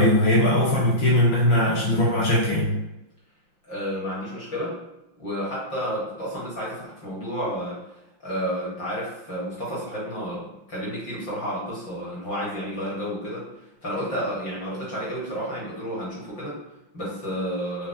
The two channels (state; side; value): late; right; 5.8 ms